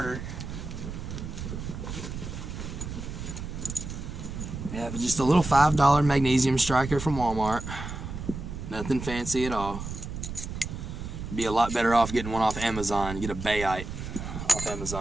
We have just a little $5 magnesium striker from Walmart. Nothing fancy at all. Be a lot better off getting one off Amazon. Get a Bayite off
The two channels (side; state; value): right; noise; rumble, 7 dB below the sound